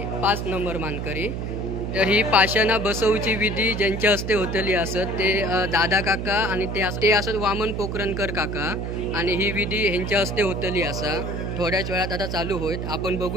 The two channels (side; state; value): right; noise; hum, 4 dB below the sound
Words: 5 नंबर मानकरी. तर ही पाषाणं बसवची विधी ज्यांच्या हस्ते होतली असत ते दादा काका आणि ते असत वामन पोखरणकर काका, आणि ही विधी ह्यांच्या हस्ते होतली असा. थोड्याच वेळात आता चालू होईल. आपण